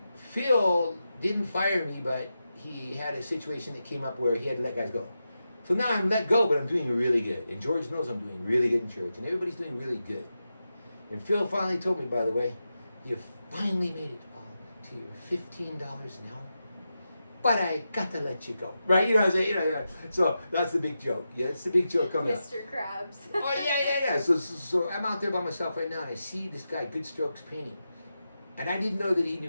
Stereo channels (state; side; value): inverted; both; correlation -0.89